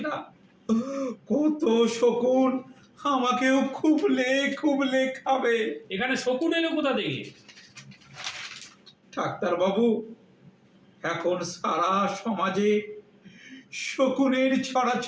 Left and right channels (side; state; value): both; identical; correlation 1.00